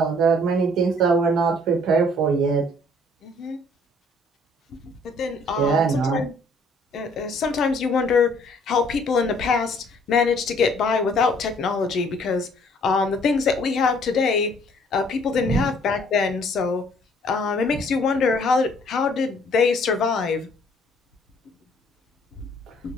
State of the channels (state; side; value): normal; both; correlation 0.60